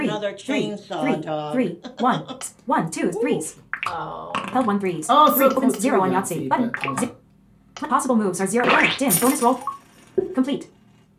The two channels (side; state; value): both; identical; correlation 1.00